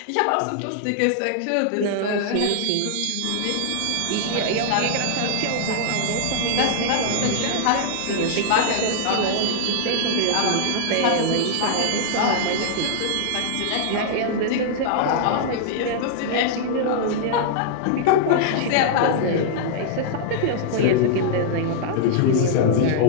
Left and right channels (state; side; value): different; both; correlation -0.01